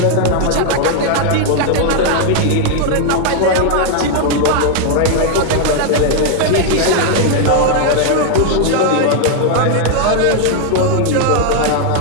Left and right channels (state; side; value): different; both; correlation 0.00